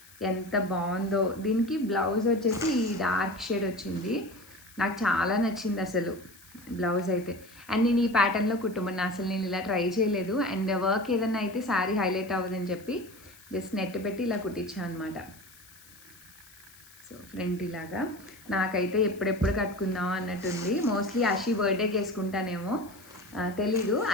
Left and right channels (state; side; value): noise; left; hiss, 23 dB below the sound